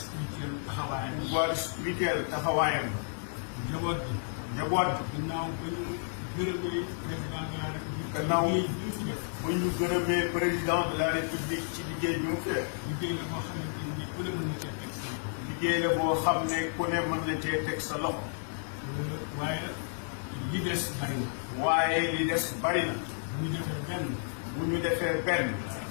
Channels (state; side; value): silent; right; digital silence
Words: pouvoir spirituel taxawaayam. njaboot bi. gannaaw ba ñu gërëmee président de la république ci liggéey bi mu fee. liggéey la boo xam ne ku ne mën na cee teg sa loxo. waaye li des bari na. waaye li des bari na. bu ñu defee benn.